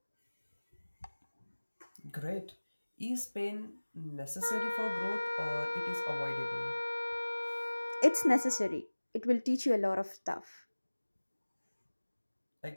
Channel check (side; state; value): both; inverted; correlation -1.00